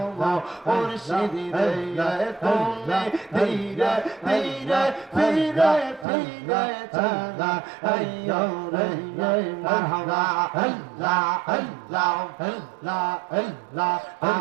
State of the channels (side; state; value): left; drops out; at 6.1 s